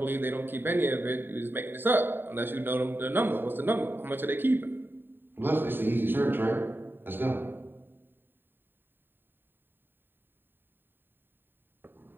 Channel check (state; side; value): late; left; 0.096 ms